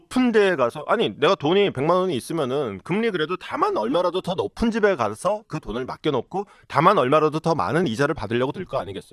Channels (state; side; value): identical; both; correlation 1.00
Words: 데에 가서 아니 내가 돈이 100만 원이 있으면은 금리 그래도 다만 얼마라도 더 높은 집에 가서 그 돈을 맡겨놓고 다만 얼마라도 더 많은 이자를 받으려고 들 거